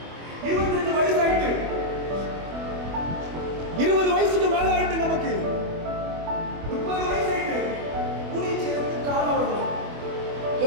25 வயசு ஆயிட்டு, 20 வயசுக்கு மேல ஆயிட்டு, நமக்கு 30 வயசு ஆயிட்டு, ஊழியம் செய்யறதுக்கு காலம் வரல.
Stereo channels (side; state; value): left; late; 24 ms